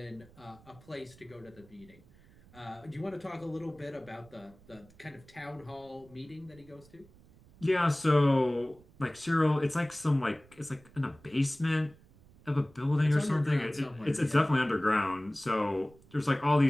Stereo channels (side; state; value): right; noise; rumble, 25 dB below the sound